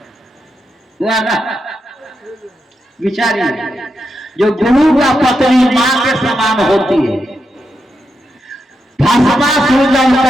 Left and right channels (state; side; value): normal; both; correlation 0.85